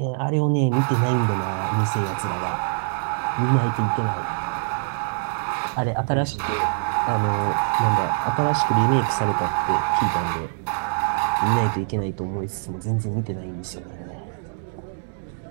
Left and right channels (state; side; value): silent; left; digital silence